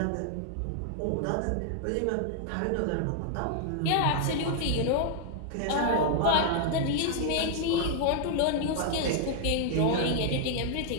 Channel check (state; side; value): different; both; correlation -0.01